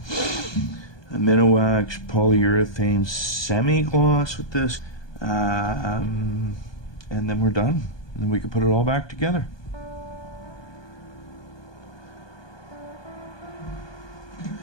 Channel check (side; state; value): right; late; 1.2 ms